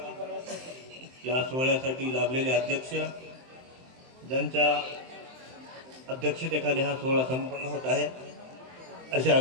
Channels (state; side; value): late; left; 23 ms